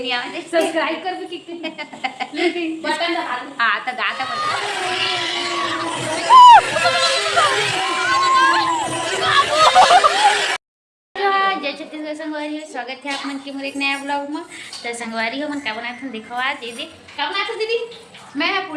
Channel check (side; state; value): both; identical; correlation 1.00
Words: आवे सब्सक्राइब कर भी कितने बटन दबा दो। हां तो गाता बोल जय छत्तीसगढ़ संगवारी हो स्वागत है आप मन के मोर एक नया ब्लॉग में। तो संगवारी हो मन का बनाए थे देखो आज दीदी का बनाए थे दीदी मैं